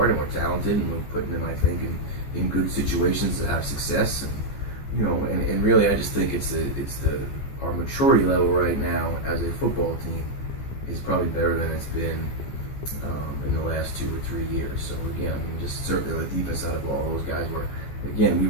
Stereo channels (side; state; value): right; late; 14 ms